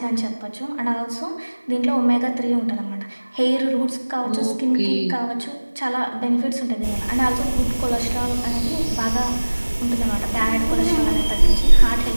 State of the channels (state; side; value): inverted; both; correlation -1.00